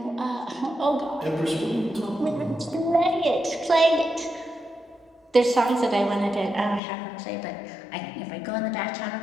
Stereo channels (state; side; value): drops out; right; at 6.8 s